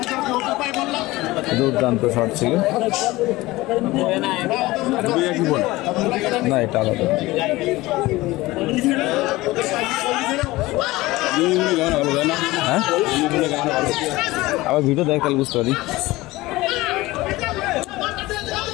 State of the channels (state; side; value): quieter; right; 19.4 dB